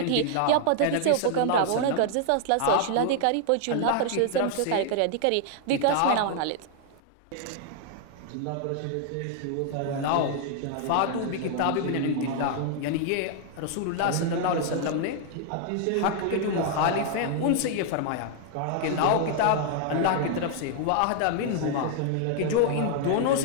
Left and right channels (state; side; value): different; both; correlation 0.00